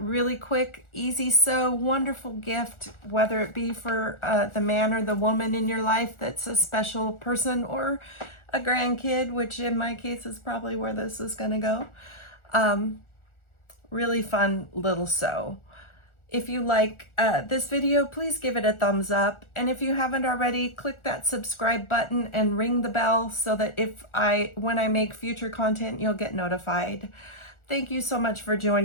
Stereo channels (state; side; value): late; right; 1.4 ms